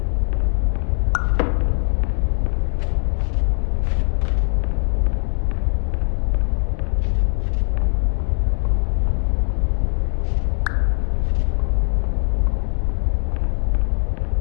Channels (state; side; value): silent; right; digital silence